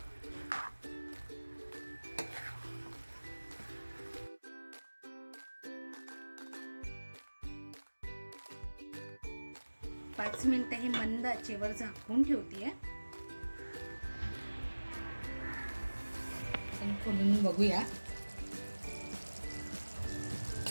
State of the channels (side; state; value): both; inverted; correlation -1.00